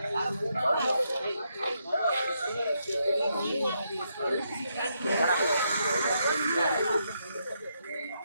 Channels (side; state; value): both; inverted; correlation -0.79